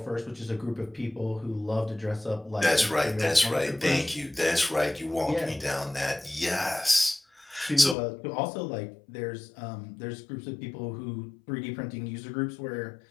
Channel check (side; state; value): right; drops out; at 8.0 s